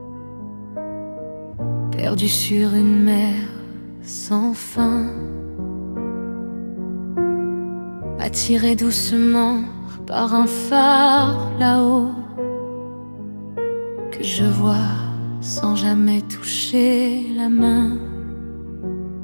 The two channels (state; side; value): inverted; both; correlation -1.00